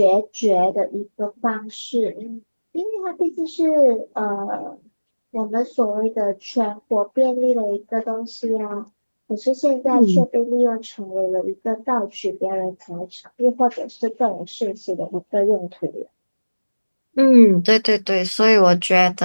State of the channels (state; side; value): inverted; both; correlation -1.00